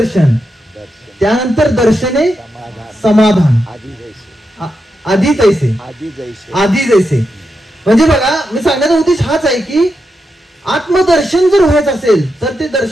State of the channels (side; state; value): both; normal; correlation 0.86